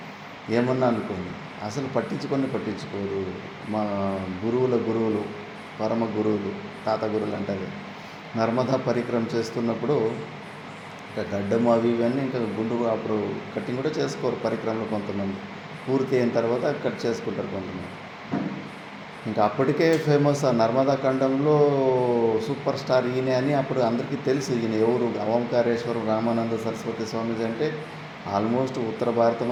ఏమన్నా అనుకోని అసలు పట్టించుకోరు. మా గురువులు పరమ గురువులు, తాత గురువులు అంటారు, నర్మదా పరిక్రమ చేస్తున్నప్పుడు ఇంకా గడ్డం అవి ఇవన్నీ ఇంకా గుండు అప్పుడు కటింగ్ కూడా చేసుకోరు పరిక్రమలో కొంతమంది. పూర్తి అయిన తర్వాత కట్ చేసుకుంటారు కొంతమంది. ఇంకా అప్పటికే ఫేమస్ ఆ నర్మదా ఖండంలో సూపర్ స్టార్ ఈయన అని అప్పుడు అందరికీ తెలుసు. ఈయన ఎవరు, ఓంకారేశ్వరం రామానంద సరస్వతి స్వామీజీ అంటే ఆల్మోస్ట్ ఉత్తర భారతం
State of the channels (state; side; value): identical; both; correlation 1.00